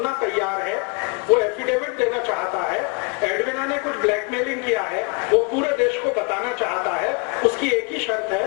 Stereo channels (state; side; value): quieter; right; 31.5 dB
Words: तैयार है, वो एफिडेविट देना चाहता है, एडविना ने कुछ ब्लैकमेलिंग किया है, वो पूरे देश को बताना चाहता है, उसकी एक ही शर्त